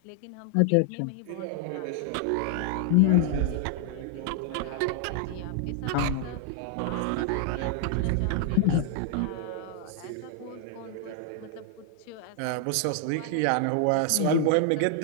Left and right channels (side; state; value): both; different; correlation 0.00